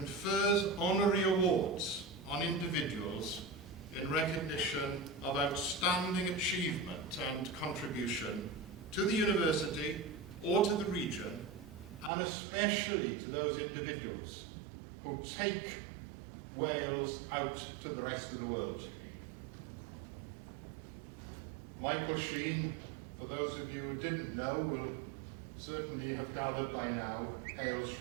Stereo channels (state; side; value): drops out; left; at 12.1 s